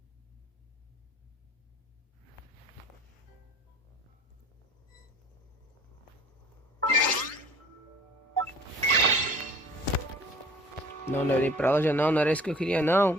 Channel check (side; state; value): both; normal; correlation 0.49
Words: Não, não olhei pra loja não, não era isso que eu queria